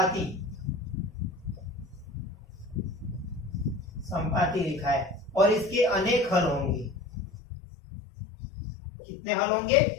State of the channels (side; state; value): right; drops out; at 7.4 s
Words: संपाती रेखाएं, और इसके अनेक हल होंगे। कितने हल होंगे,